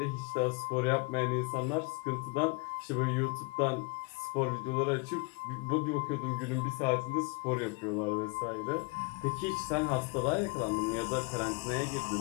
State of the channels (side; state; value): right; quieter; 30.0 dB